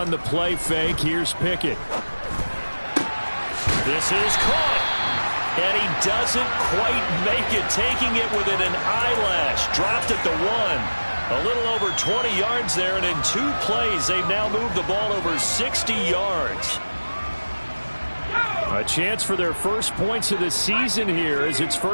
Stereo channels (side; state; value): both; inverted; correlation -1.00